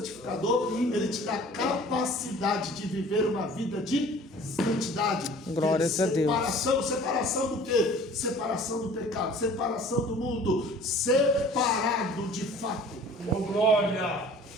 ele te dá capacidade de viver uma vida de santidade. Glórias a Deus. Separação do quê? Separação do pecado, separação do mundo, separado de fato. Oh, glória!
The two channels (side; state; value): both; normal; correlation 0.48